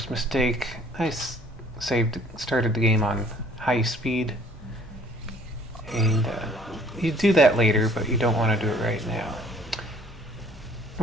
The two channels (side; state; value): both; normal; correlation 0.56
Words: mistake. I started the game on high speed. And you do that later, but you don't want to do it right now.